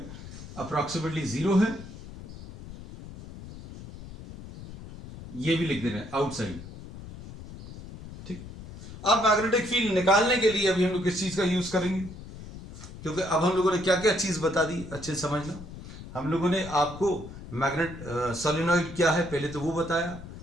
अप्रोक्सीमेटली जीरो है. ये भी लिख दे रहे हैं आउटसाइड. ठीक. अब मैग्नेटिक फील्ड निकालने के लिए अभी हम लोग किस चीज का यूज करेंगे, क्योंकि अब हम लोगों ने क्या क्या चीज बता दी अच्छे से समझना. हम लोगों ने आपको मैग्नेट सोलेनॉइड क्या है पहले तो वो बताया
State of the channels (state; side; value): noise; left; rumble, 14 dB below the sound